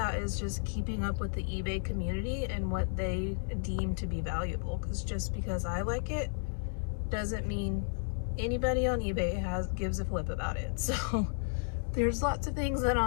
is just keeping up with the eBay community and what they deem to be valuable, because just because I like it doesn't mean anybody on eBay gives a flip about it. So there's lots of things that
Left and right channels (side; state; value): right; silent; digital silence